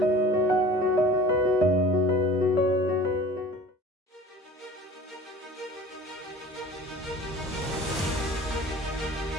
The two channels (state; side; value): normal; both; correlation 0.43